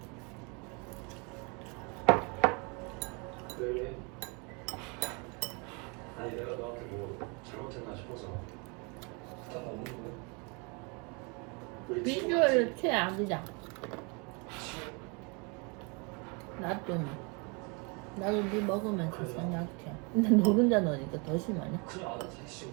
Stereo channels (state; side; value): quieter; left; 32.0 dB